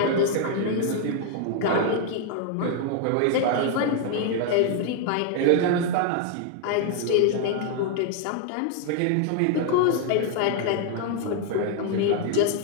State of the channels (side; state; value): both; different; correlation 0.00